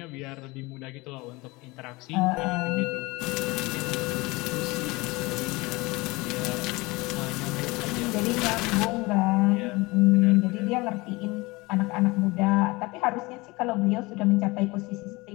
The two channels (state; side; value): quieter; right; 23.2 dB